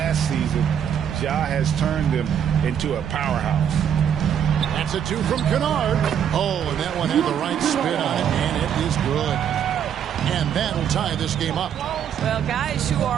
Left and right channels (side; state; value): left; quieter; 8.8 dB